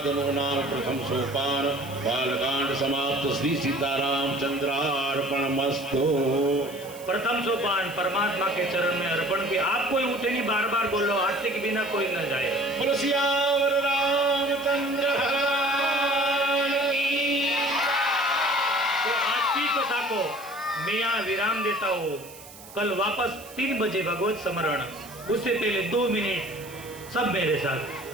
नाम प्रथम सोपान बालकांड समाप्त। श्री सीतारामचंद्रार्पणमस्तु। प्रथम सोपान परमात्मा के चरण में अर्पण की। आप कोई उठे नहीं, बार बार बोलो, हादसे के बिना कोई न जाए। बोलो सियावर रामचंद्र भगवान की। तो आज की कथा को मैं यहाँ विराम देता हूँ। कल वापस 3 बजे भगवत स्मरण, उससे पहले 2 मिनट सब मेरे साथ।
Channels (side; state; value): right; noise; hiss, 18 dB below the sound